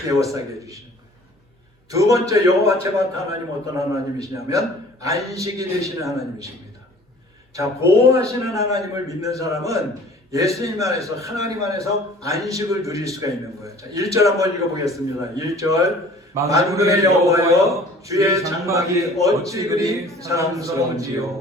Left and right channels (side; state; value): both; normal; correlation 0.49